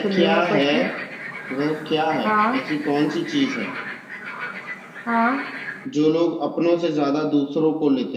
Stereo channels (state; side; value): identical; both; correlation 1.00